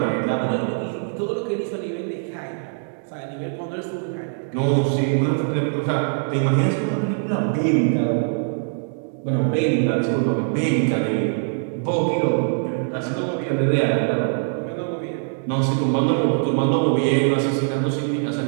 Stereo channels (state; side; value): silent; left; digital silence